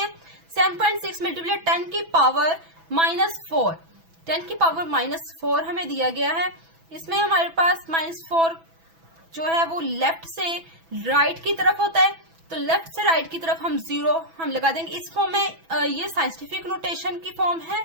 7.6 मल्टीप्लाई 10 की पावर -4। 10 की पावर -4 हमें दिया गया है। इसमें हमारे पास -4 जो है वो लेफ्ट से राइट की तरफ होता है, तो लेफ्ट से राइट की तरफ हम जीरो हम लगा देंगे। इस फॉर्म में ये साइंटिफिक नोटेशन की फॉर्म है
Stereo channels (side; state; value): left; late; 6.1 ms